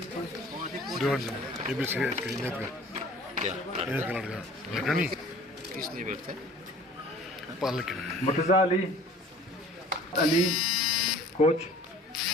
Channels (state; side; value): normal; both; correlation 0.48